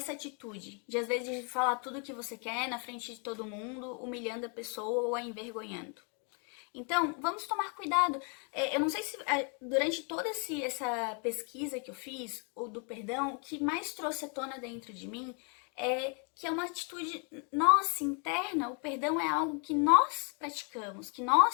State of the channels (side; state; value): right; quieter; 38.5 dB